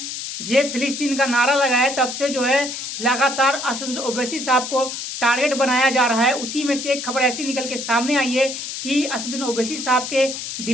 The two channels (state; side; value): noise; left; hiss, 7 dB below the sound